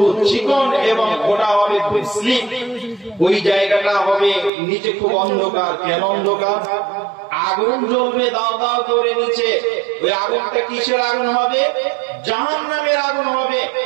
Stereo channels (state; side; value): drops out; left; at 4.5 s